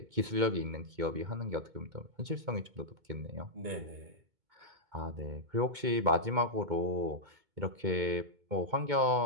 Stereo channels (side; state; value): left; late; 2.2 ms